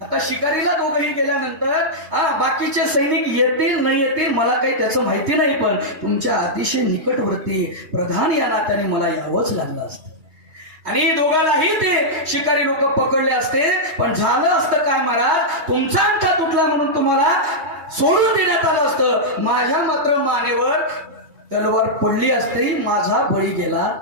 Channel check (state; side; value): late; left; 3.2 ms